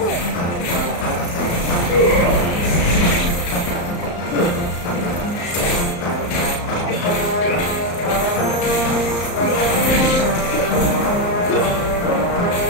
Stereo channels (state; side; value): late; right; 34 ms